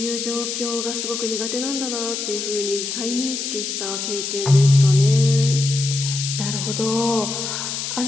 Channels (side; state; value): left; noise; hiss, 4 dB below the sound